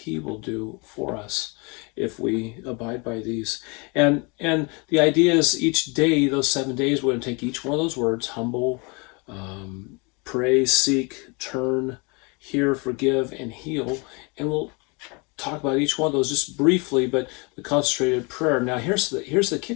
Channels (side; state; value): right; quieter; 30.2 dB